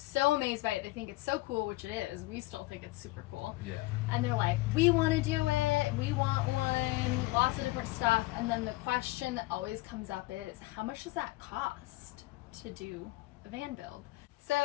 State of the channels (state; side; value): quieter; right; 20.2 dB